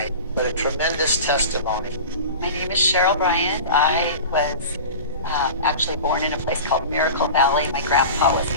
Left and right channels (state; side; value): inverted; both; correlation -0.34